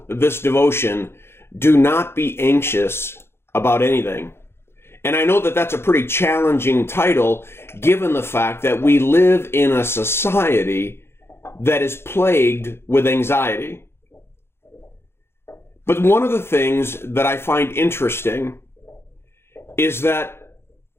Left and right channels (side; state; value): right; late; 0.12 ms